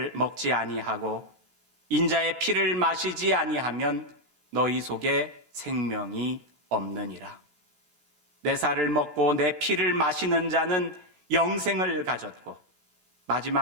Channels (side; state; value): left; late; 13 ms